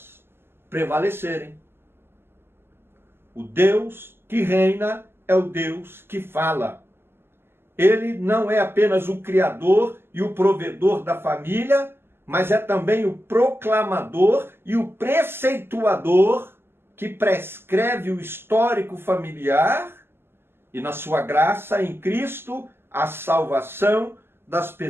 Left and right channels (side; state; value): left; late; 0.11 ms